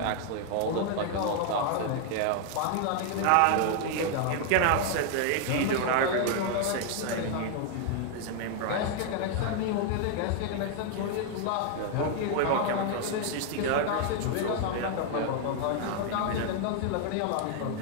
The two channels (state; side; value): different; both; correlation 0.00